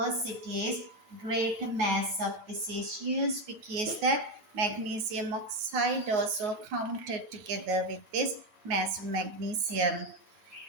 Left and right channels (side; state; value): left; late; 9.5 ms